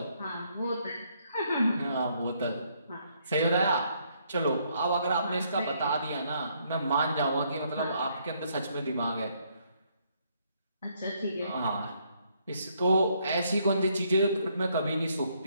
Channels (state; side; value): inverted; both; correlation -0.71